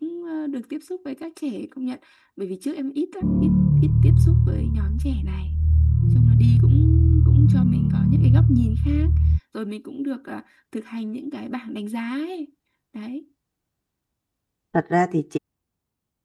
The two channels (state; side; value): identical; both; correlation 1.00